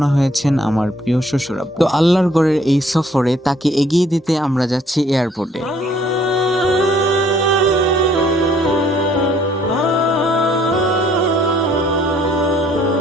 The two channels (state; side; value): normal; both; correlation 0.62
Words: হয়েছেন আমার প্রিয় শ্বশুর আব্বু। তো আল্লাহর ঘরের এই সফরে তাকে এগিয়ে দিতে আমরা যাচ্ছি এয়ারপোর্টে।